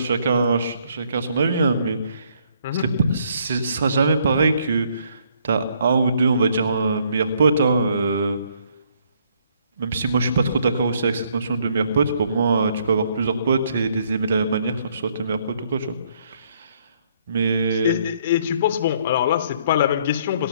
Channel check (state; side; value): inverted; both; correlation -0.67